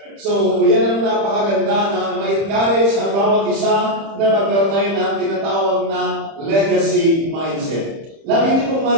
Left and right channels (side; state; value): left; late; 30 ms